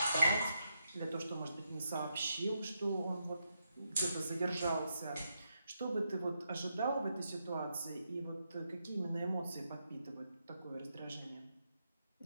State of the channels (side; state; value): both; inverted; correlation -0.83